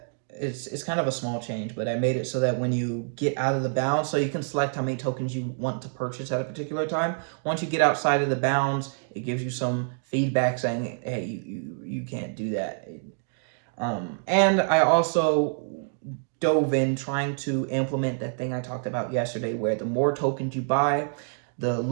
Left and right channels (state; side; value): silent; left; digital silence